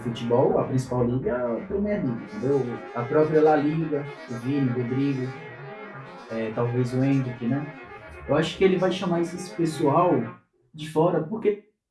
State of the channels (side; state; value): both; identical; correlation 1.00